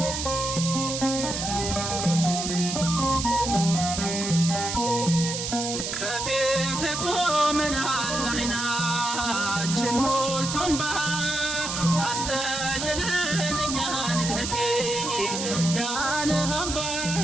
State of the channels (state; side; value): noise; right; hiss, 3 dB below the sound